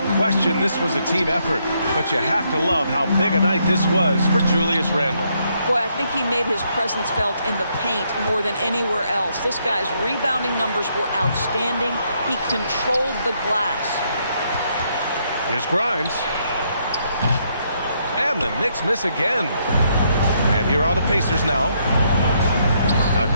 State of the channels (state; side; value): inverted; both; correlation -0.74